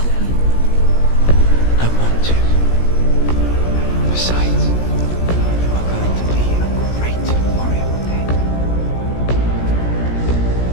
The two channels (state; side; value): late; right; 17 ms